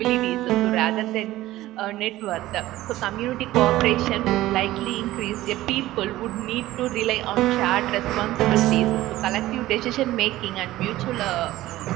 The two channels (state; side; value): quieter; left; 16.1 dB